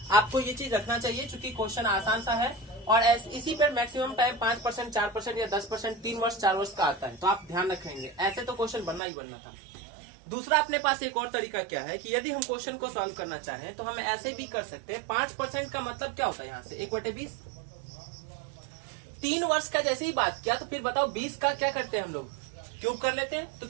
आपको ये चीज रखना चाहिए चूंकि क्वेश्चन आसान सा है और इसी पर मैक्सिमम टाइम 5%, 4% या 10% 3 वर्ष 4 वर्ष का आता है, तो आप ध्यान रखेंगे। ऐसे तो क्वेश्चन बनना ही बनना था। दूसरा अपने पास एक और तरीका क्या है कि यदि हम क्वेश्चन को सॉल्व करना चाहें तो हम ऐसे भी कर सकते हैं। 5% का मतलब क्या होता है यहाँ से 1/20। 3 वर्ष का जैसे ही बात किया तो फिर बताओ 20 का क्या करते हैं हम लोग, क्यूब कर लेते हैं तो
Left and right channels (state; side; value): drops out; left; at 9.0 s